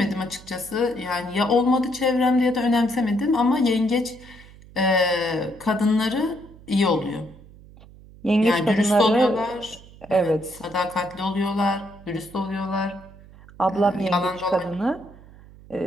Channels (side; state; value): right; noise; hum, 21 dB below the sound